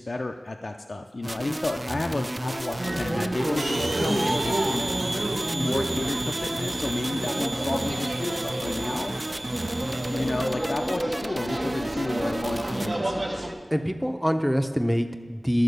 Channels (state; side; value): normal; both; correlation 0.97